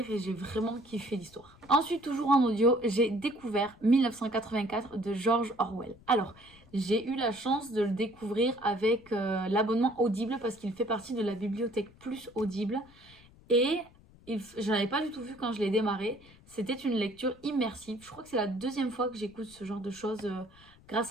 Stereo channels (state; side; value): noise; left; rumble, 25 dB below the sound